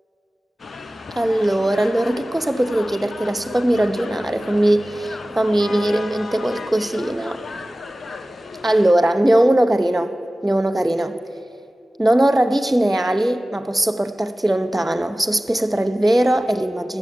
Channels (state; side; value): normal; both; correlation 0.97